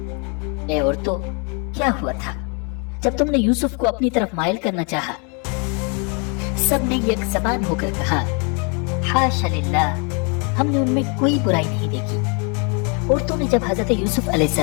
ए औरतों, क्या हुआ था जब तुमने यूसुफ को अपनी तरफ माइल करना चाहा सबने एक ज़बान होकर कहा, हाशा लिल्लाह, हमने उनमें कोई बुराई नहीं देखी। औरतों ने जब हजरत यूसुफ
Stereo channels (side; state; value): right; quieter; 35.5 dB